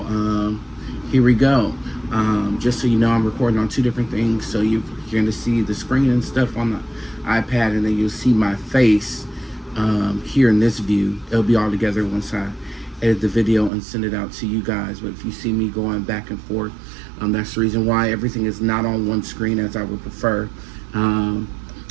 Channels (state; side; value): drops out; left; at 13.7 s